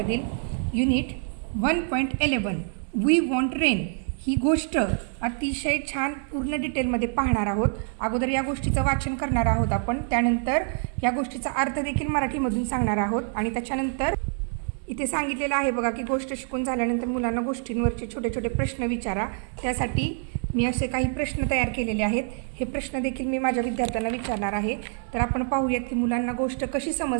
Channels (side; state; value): left; silent; 58 dB below the other